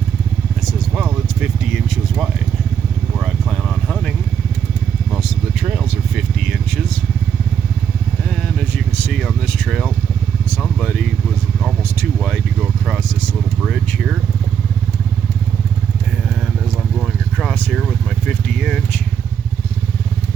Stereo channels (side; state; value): left; quieter; 8.0 dB